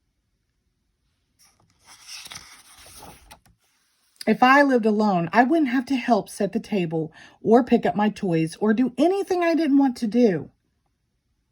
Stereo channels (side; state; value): both; identical; correlation 1.00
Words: If I lived alone, I wouldn't have to help set the table or pick up my toys or do anything I didn't want to do.